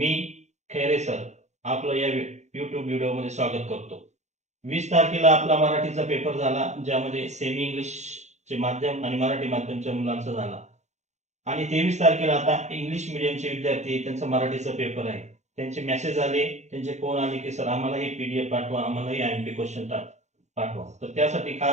खैरे सर आपलं या YouTube व्हिडिओमध्ये स्वागत करतो. 20 तारखेला आपला मराठीचा पेपर झाला, ज्यामध्ये सेमी इंग्लिशचे माध्यम आणि मराठी माध्यमच्या मुलांचा झाला. आणि 23 तारखेला आता इंग्लिश मीडियमचे विद्यार्थी त्यांचा मराठीचा पेपर आहे. त्यांचे मेसेज आले, त्यांचे फोन आले की सर आम्हाला ही PDF पाठवा, आम्हाला ही IMP क्वेश्चन पाठवा. तर त्यासाठी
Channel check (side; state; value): left; late; 0.33 ms